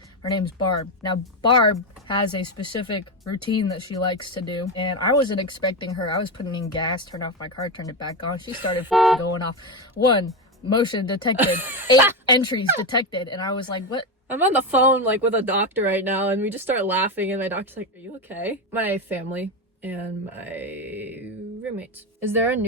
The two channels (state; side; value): normal; both; correlation 0.13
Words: Her name's Barb. Now, Barb has a specific routine that she likes to do, and I wasn't expecting her. I was putting in gas, turned off my car, turned it back on. She started going off. 1, motion detected. 8 entries detected. And I was like, what? I'm on the phone, like, with a doctor right now, and we just start laughing, and my doctor's like, are you okay? My family and my roommates. Is there a